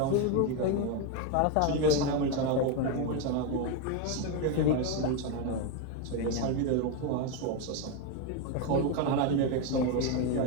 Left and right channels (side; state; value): both; different; correlation 0.02